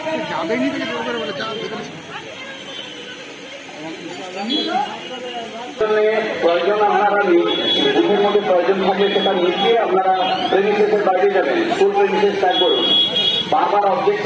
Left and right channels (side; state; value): both; identical; correlation 1.00